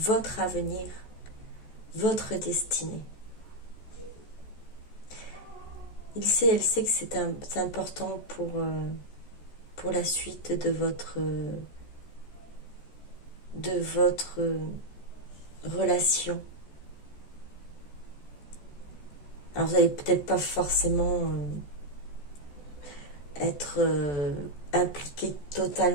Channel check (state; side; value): late; right; 14 ms